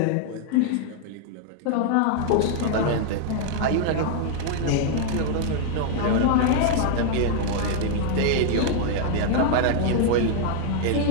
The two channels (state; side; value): different; both; correlation 0.00